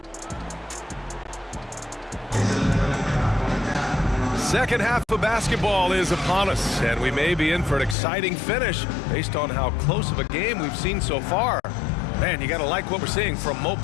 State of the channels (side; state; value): right; drops out; at 8.0 s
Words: Second half of basketball is upon us, and we may be in for an exciting finish based on how close of a game we've seen so far. Man, you got to like what we're seeing from Mo